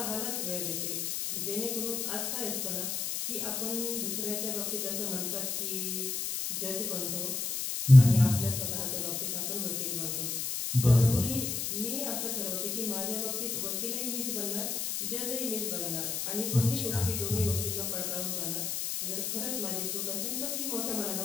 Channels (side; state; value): left; noise; hiss, 2 dB below the sound